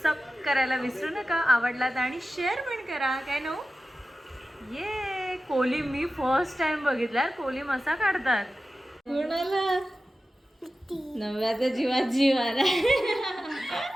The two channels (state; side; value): normal; both; correlation 0.94